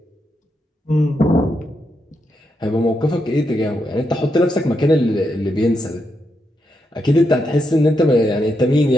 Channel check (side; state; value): both; normal; correlation 0.83